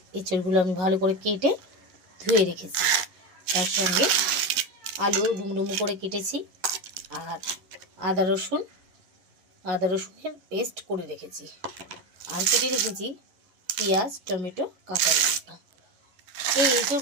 এঁচোড়গুলো আমি ভালো করে কেটে ধুয়ে রেখেছি। তার সঙ্গে আলু ডুমডুমু করে কেটেছি, আর আদা রসুনের পেস্ট করে রেখেছি, আর কেটে রেখেছি পেঁয়াজ, টমেটো, কাঁচা লঙ্কা। এই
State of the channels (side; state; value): left; late; 11 ms